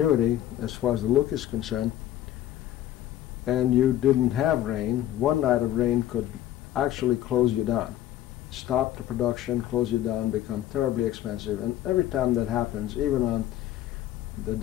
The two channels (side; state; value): right; quieter; 13.0 dB